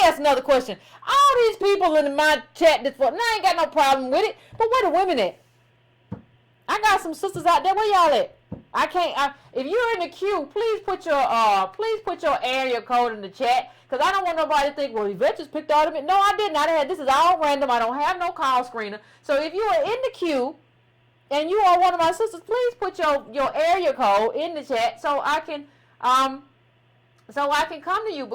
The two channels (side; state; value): both; identical; correlation 1.00